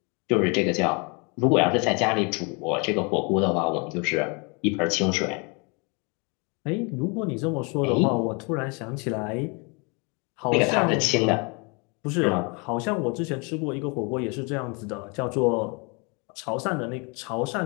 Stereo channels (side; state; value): right; quieter; 31.8 dB